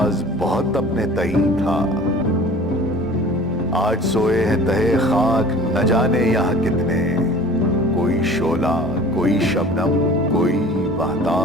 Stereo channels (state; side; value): normal; both; correlation 0.44